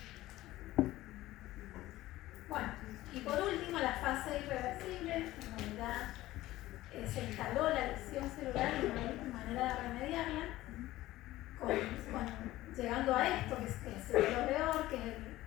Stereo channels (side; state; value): right; quieter; 16.3 dB